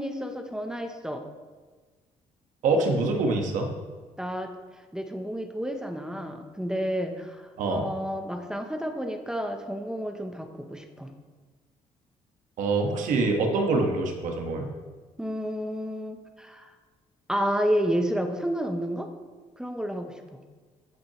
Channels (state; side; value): normal; both; correlation 0.69